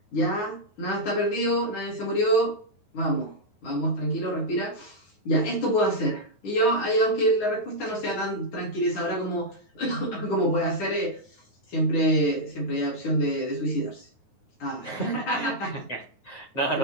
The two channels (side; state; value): right; late; 9.4 ms